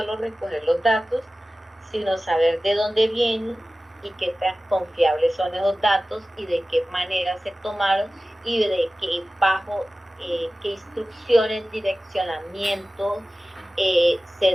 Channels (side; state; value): both; normal; correlation 0.96